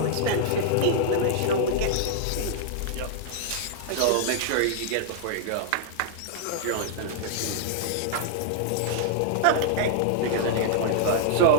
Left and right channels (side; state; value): both; different; correlation -0.01